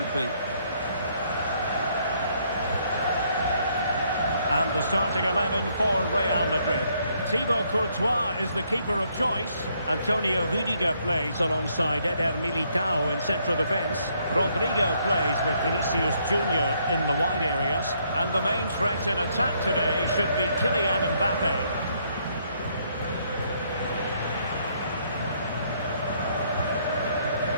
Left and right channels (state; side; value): inverted; both; correlation -0.70